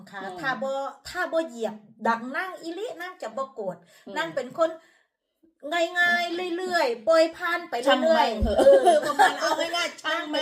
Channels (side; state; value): both; identical; correlation 1.00